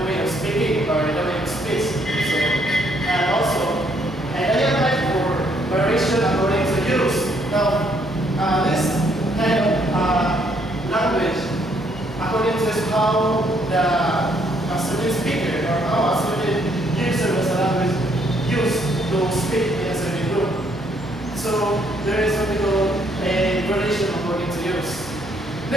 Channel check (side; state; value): right; noise; hum, 20 dB below the sound